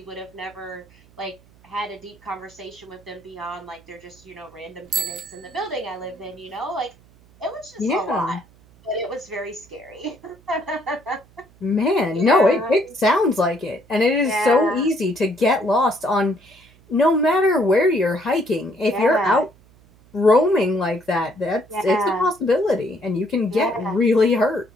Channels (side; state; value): right; noise; hum, 28 dB below the sound